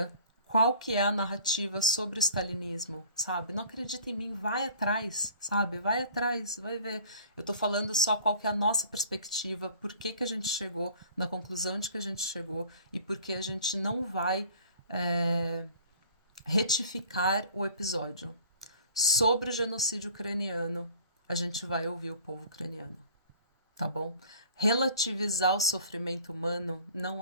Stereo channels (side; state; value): both; inverted; correlation -0.48